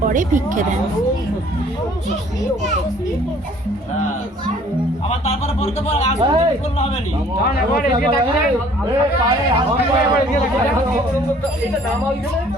ভিক্ষে দেন। আবার তারপরে পড়তে পর আসলে করলে হবে নি। এটা নামা হইছে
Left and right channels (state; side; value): normal; both; correlation 0.56